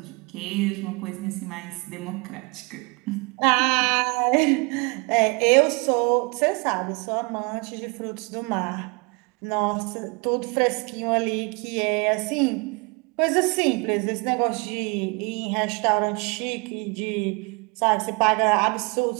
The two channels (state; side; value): quieter; left; 29.8 dB